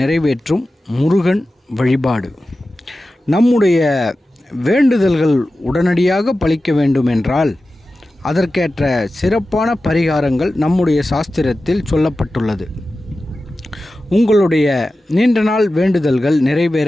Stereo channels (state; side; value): normal; both; correlation 0.94